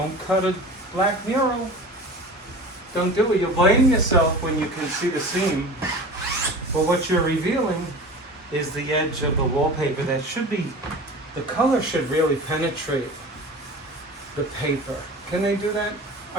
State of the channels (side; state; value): both; normal; correlation 0.36